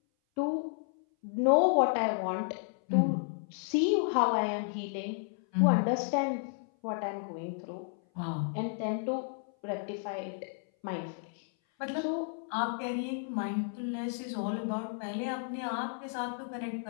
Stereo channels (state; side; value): silent; right; 56 dB below the other